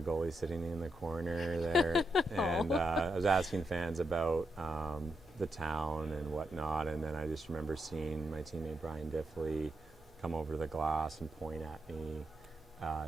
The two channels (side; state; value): both; normal; correlation 0.83